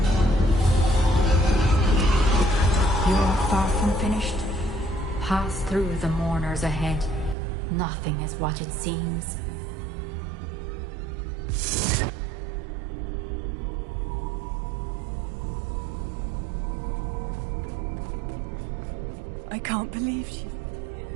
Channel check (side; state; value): left; drops out; at 7.4 s